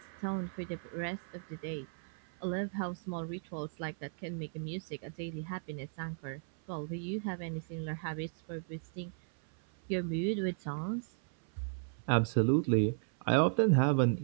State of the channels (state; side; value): silent; left; 54 dB below the other